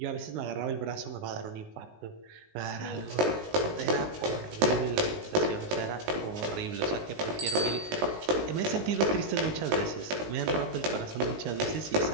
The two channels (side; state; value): left; late; 19 ms